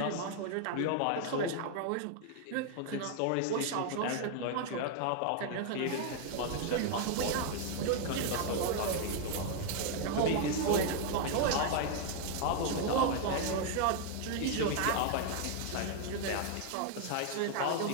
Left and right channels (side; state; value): both; different; correlation 0.00